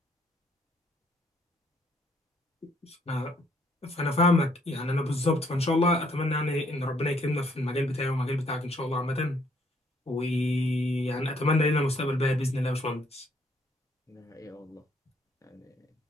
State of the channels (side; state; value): both; normal; correlation 0.67